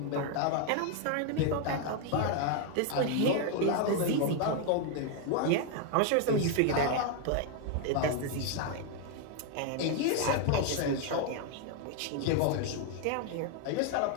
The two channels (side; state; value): both; different; correlation 0.01